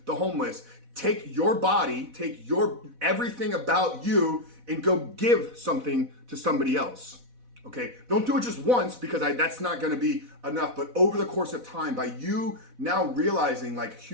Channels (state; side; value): late; left; 4.1 ms